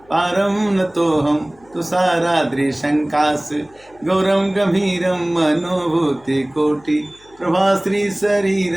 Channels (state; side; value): noise; left; hum, 29 dB below the sound